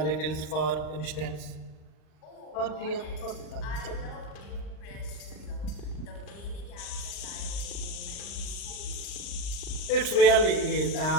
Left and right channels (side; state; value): right; late; 39 ms